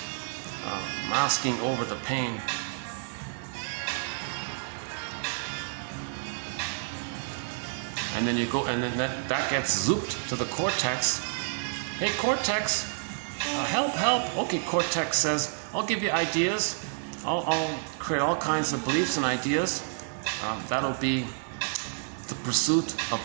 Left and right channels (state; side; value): silent; left; digital silence